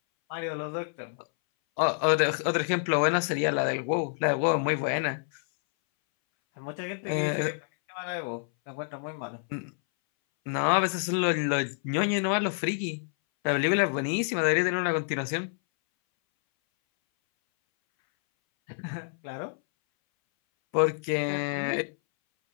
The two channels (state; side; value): silent; right; 59 dB below the other